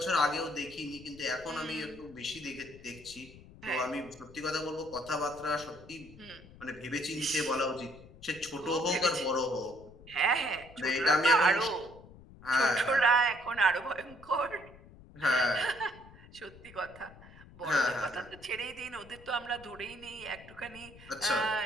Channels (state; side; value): noise; left; rumble, 20 dB below the sound